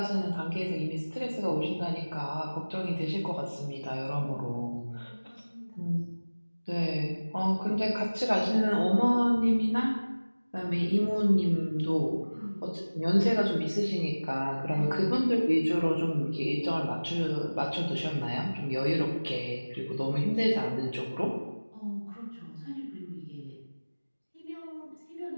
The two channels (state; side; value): inverted; both; correlation -1.00